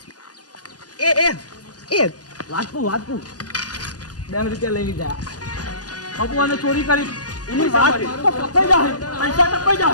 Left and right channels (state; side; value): late; right; 0.68 ms